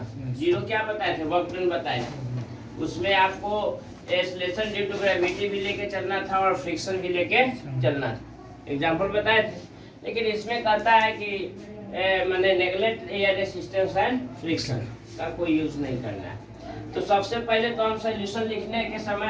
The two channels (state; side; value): identical; both; correlation 1.00